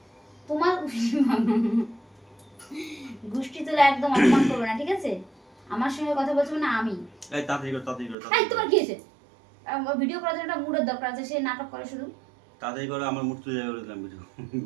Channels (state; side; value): drops out; left; at 8.2 s